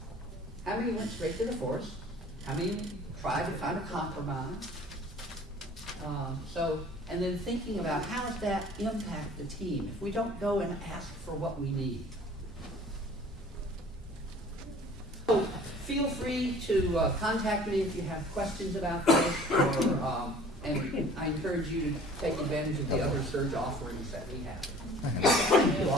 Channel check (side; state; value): both; normal; correlation 0.49